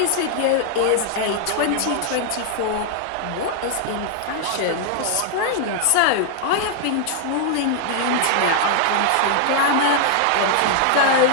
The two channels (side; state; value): both; different; correlation 0.00